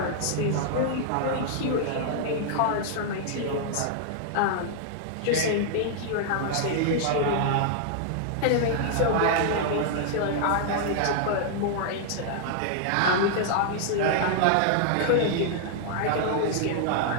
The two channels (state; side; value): different; both; correlation -0.01